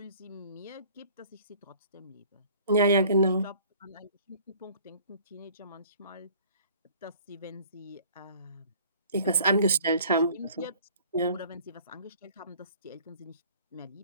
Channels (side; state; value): both; inverted; correlation -0.53